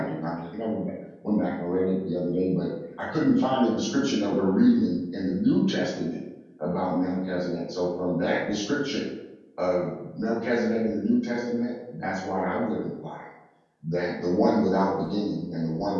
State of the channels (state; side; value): identical; both; correlation 1.00